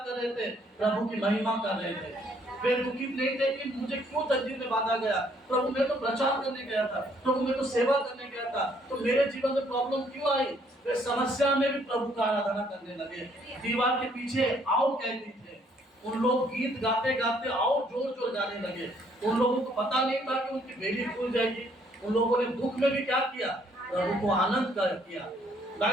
रहे थे? प्रभु की महिमा कर रहे थे। वे दुखित नहीं थे कि मुझे क्यों तंजीर में बांधा गया, प्रभु मैं तो प्रचार करने गया था, प्रभु मैं तो सेवा करने गया था, तो मेरे जीवन में प्रॉब्लम क्यों आई? वे समस्या में भी प्रभु का आराधना करने लगे। दीवार के पीछे और कैदी थे, उन लोग गीत गाते गाते और जोर जोर गाने लगे। उन लोगों को पता नहीं था कि उनकी बेड़ी खुल जाएगी। उन लोगों ने दुख में भी क्या किया? प्रभु को आनंद कर किया।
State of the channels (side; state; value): both; normal; correlation 0.65